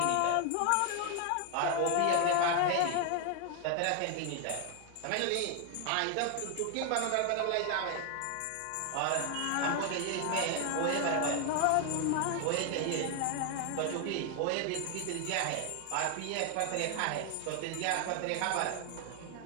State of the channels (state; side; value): different; both; correlation 0.00